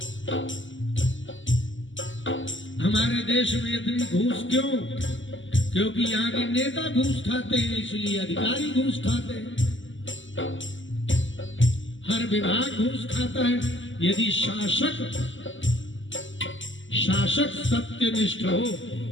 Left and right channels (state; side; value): late; right; 0.55 ms